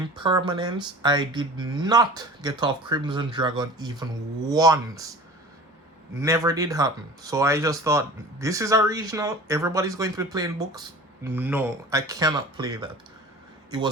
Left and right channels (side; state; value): both; normal; correlation 0.40